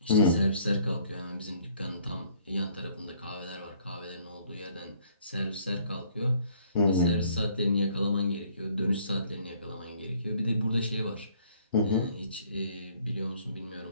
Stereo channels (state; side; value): inverted; both; correlation -0.60